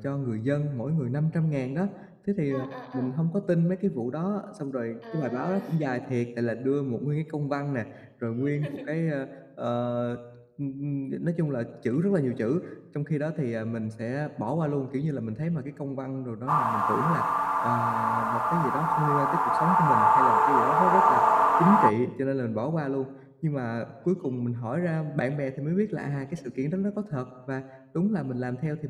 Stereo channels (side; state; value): both; identical; correlation 1.00